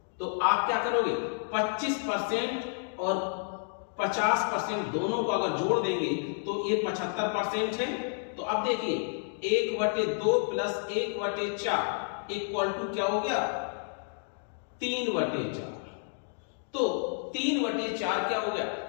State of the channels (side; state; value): right; silent; 58 dB below the other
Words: तो आप क्या करोगे 25% और 50% दोनों को अगर जोड़ देंगे तो ये 75% है। तो अब देखिए 1/2 प्लस 1/4 इक्वल टू क्या हो गया 3/4। तो 3/4 क्या हो गया